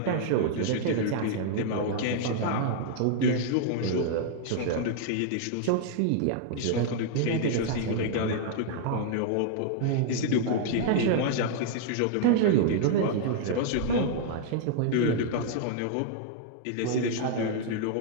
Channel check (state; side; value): different; both; correlation -0.01